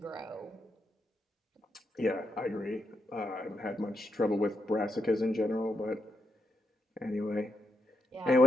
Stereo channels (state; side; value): normal; both; correlation 0.82